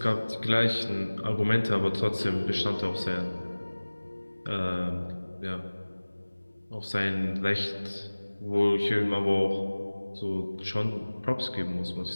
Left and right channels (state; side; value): inverted; both; correlation -1.00